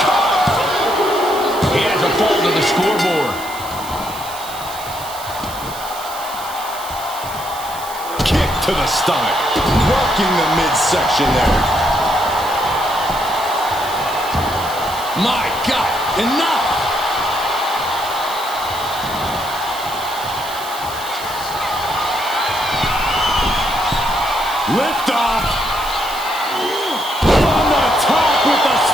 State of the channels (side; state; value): right; noise; hiss, 13 dB below the sound